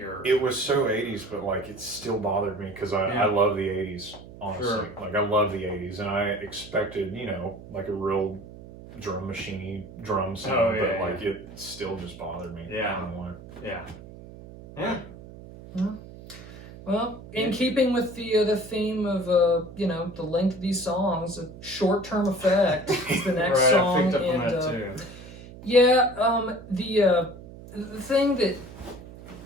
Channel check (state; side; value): noise; right; hum, 16 dB below the sound